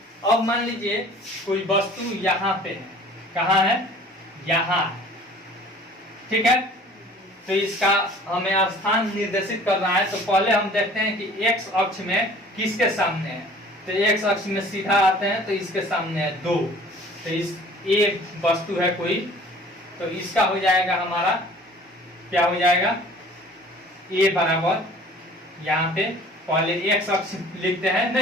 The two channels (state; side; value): normal; both; correlation 0.49